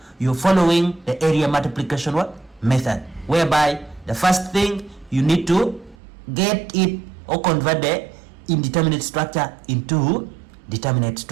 You're following the area multiplication method, whereby the first thing you need to get it or convert the indeterminate structure into determinate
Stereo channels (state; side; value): drops out; left; at 6.0 s